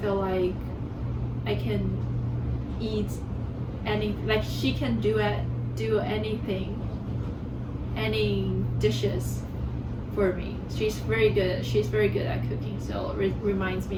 feel like I can eat like she can do anything, any dishes for me. She's very good at cooking, so it reminds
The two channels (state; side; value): identical; both; correlation 1.00